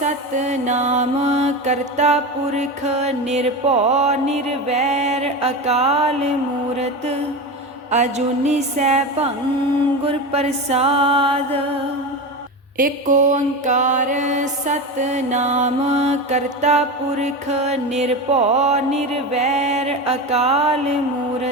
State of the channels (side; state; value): both; normal; correlation 0.22